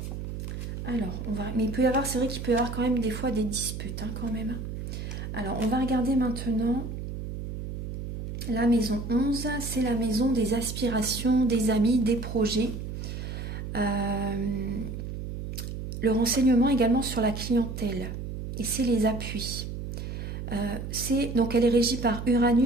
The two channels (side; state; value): right; noise; hum, 7 dB below the sound